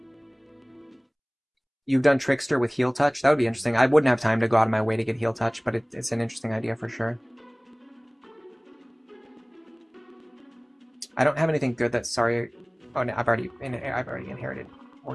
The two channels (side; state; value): both; identical; correlation 1.00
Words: You've done Trickster with Heal Touch? That would be interesting. I wouldn't have time to go out of my way to get Heal Touch, but it's an interesting idea for sure. I don't have anything good that's sorry. Oh no, I've already inherited